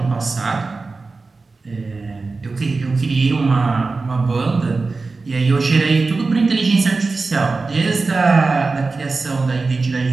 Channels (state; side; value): quieter; left; 3.9 dB